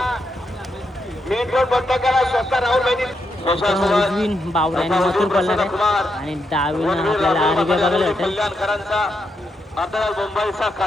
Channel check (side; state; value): both; normal; correlation 0.82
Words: मेन रोड बंद करा. स्वतः राहुल बहिणी उजवीन बावड्याने मथुर पडणार आहे आणि डावीनं आपल्याला आरबी बघायला भेटेल. कल्याणकरांचा आता मुंबईचा